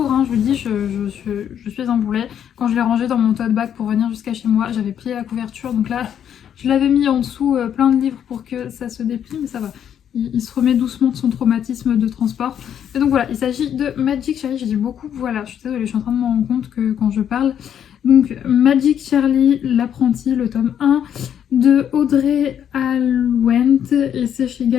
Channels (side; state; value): right; quieter; 9.2 dB